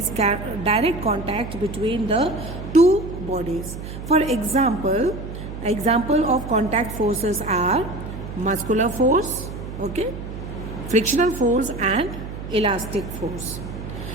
direct contact between the two bodies. For example of contact forces are muscular force, okay, frictional force and elastic force.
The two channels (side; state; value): right; noise; hum, 9 dB below the sound